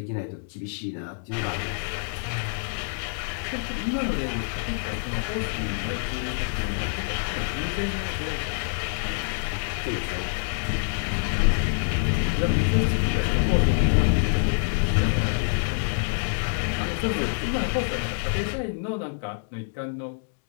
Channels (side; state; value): right; silent; digital silence